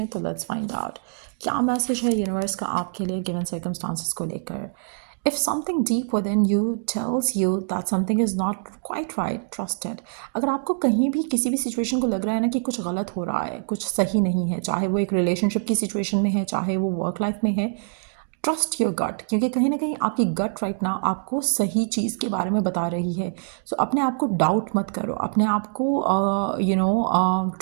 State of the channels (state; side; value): silent; left; 62 dB below the other